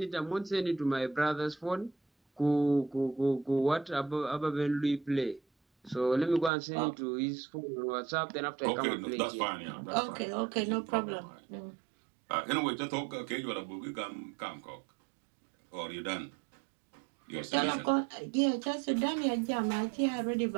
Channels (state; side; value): drops out; left; at 6.5 s